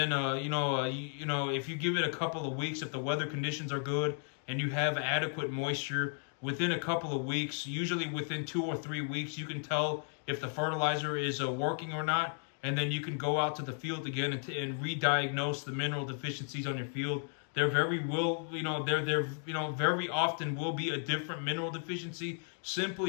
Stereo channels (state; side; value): silent; right; 55 dB below the other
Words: if you give it a couple of weeks, if the weather conditions are good and you have adequate moisture, within a couple of weeks, usually within 2 or 3 weeks, you can tell if the fertilizer is working or not. And then you can go out to the field again and re-diagnose the mineral deficiencies on your field. There very often will be a different mineral deficiency,